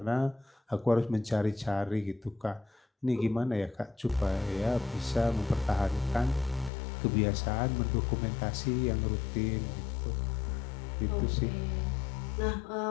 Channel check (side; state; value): right; drops out; at 6.7 s